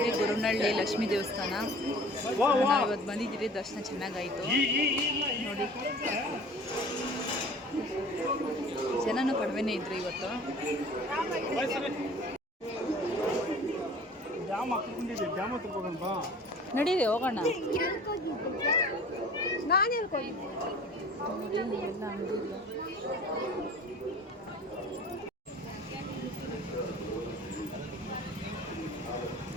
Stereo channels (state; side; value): normal; both; correlation 0.45